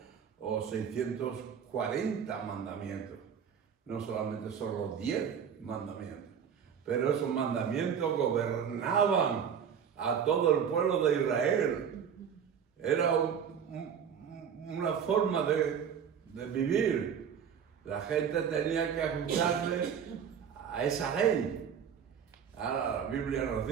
o 640 mandamientos. No solamente son los 10 mandamientos. Pero esos mandamientos gobernaban a todo el pueblo de Israel. Era una forma de vivir. La gente tenía que ajustarse a esa ley. Ahora la Biblia nos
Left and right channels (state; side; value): quieter; left; 7.7 dB